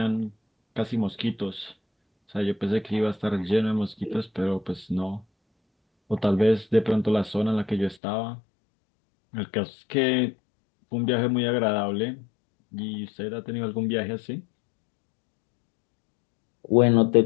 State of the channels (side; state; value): right; drops out; at 8.0 s